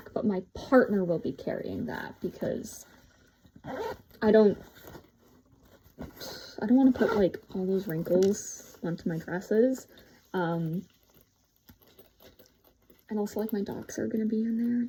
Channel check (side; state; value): both; identical; correlation 1.00